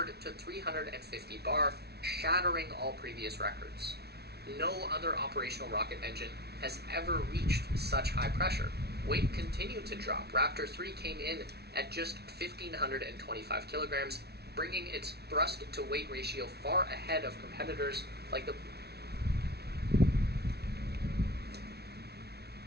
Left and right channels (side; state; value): left; late; 0.48 ms